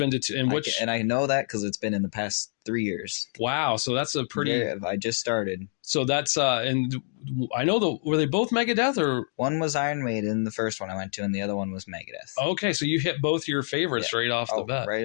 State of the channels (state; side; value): silent; right; digital silence